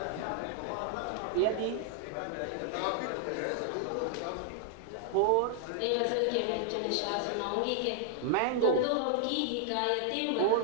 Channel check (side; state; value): both; different; correlation -0.01